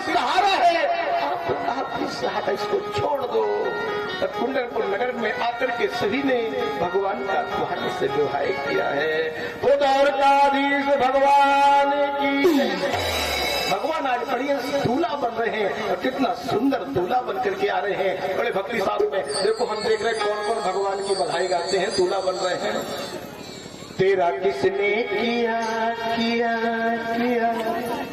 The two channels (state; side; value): noise; right; hum, 29 dB below the sound